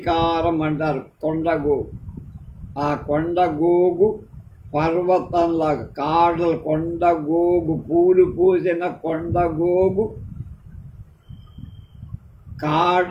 అంటారు కొండగోగు. ఆ కొండగోగు పర్వతంలాగా కాడలు, కొండగోగు పూలు పూసిన కొండగోగు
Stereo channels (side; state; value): both; identical; correlation 1.00